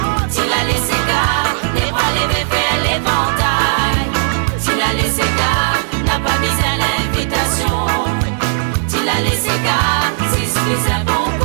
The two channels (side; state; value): left; silent; digital silence